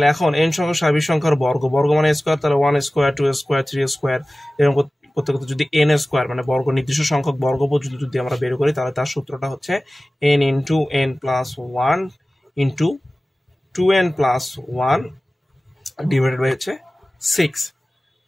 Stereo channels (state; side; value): normal; both; correlation 0.97